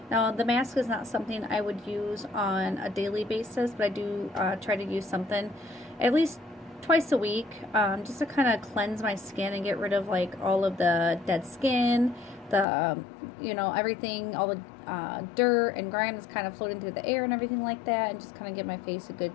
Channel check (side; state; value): right; drops out; at 12.7 s